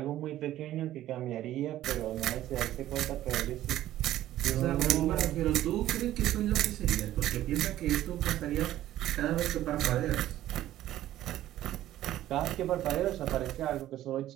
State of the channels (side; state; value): left; quieter; 13.6 dB